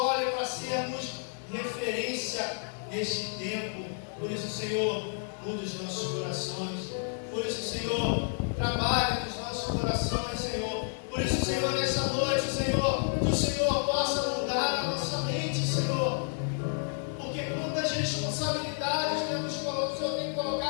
para sermos referência neste tempo. Por isso, Senhor, muda os nossos corações. Por isso, Senhor, trabalha nos nossos corações, Senhor. Por isso, Senhor, nessa noite, Senhor, que o Senhor possa mudar a nossa mente, Senhor. Porque quantas responsabilidades o Senhor tem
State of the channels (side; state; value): right; silent; 57 dB below the other